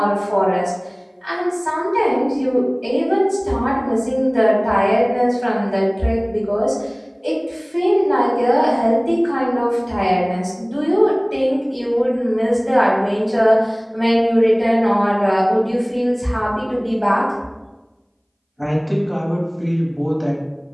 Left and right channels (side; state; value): both; identical; correlation 1.00